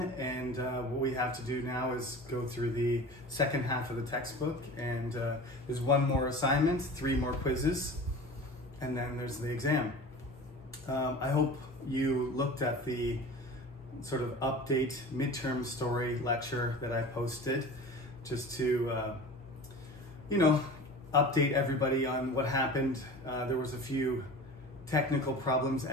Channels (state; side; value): normal; both; correlation 0.36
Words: and what we have to do now is go through the second half of the textbook, and there's one more assignment, 3 more quizzes, and then there's the exam. I hope you looked at the sort of update midterm story lecture that I posted just to update everybody on what happened. There was a few technical problems